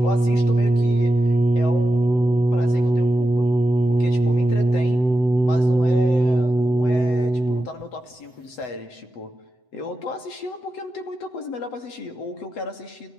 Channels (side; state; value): right; late; 8.0 ms